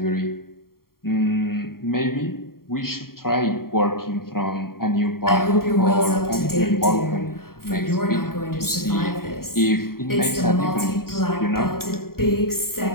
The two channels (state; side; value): late; right; 0.93 ms